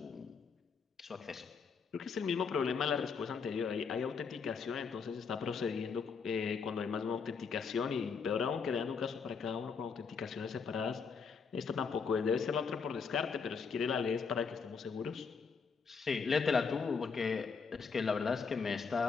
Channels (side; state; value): right; quieter; 5.6 dB